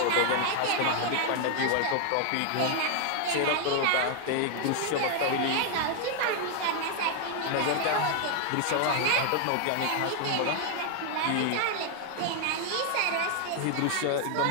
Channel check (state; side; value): different; both; correlation 0.00